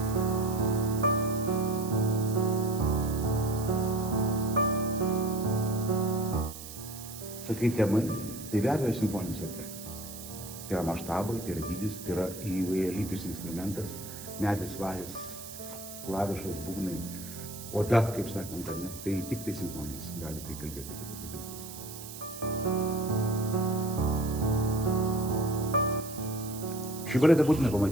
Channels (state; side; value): noise; right; hiss, 12 dB below the sound